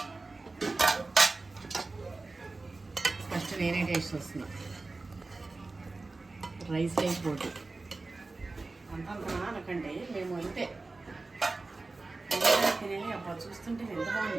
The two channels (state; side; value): quieter; left; 3.5 dB